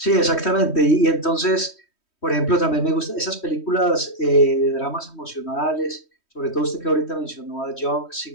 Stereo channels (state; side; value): late; right; 3.1 ms